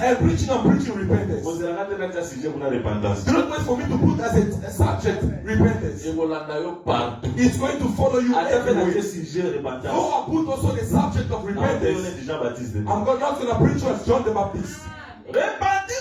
I'm preaching repentance. On se la rate dans sujet pour la repentance. Do not wait for me to put as a subject repentance. Et voilà, d'ailleurs, partout. It's going to follow you À travers everywhere. le sujet repentance. Though I put also the subject of On est repentance, déjà baptisé. I'm not going to preach as John the Baptist.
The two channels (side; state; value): both; identical; correlation 1.00